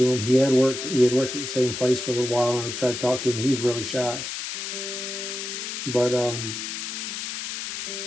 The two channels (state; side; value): noise; left; hiss, 5 dB below the sound